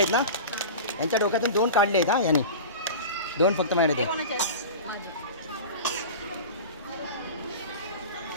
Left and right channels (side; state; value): both; inverted; correlation -0.31